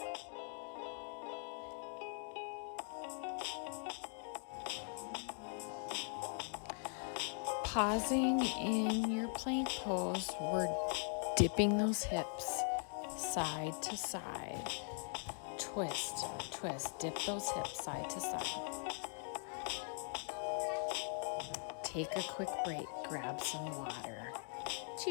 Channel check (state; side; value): silent; right; 50 dB below the other